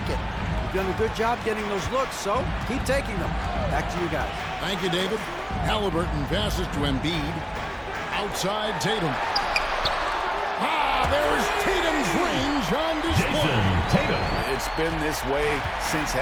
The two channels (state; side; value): identical; both; correlation 1.00